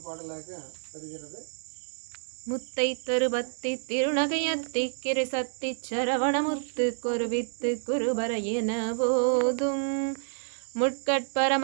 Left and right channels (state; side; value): silent; left; digital silence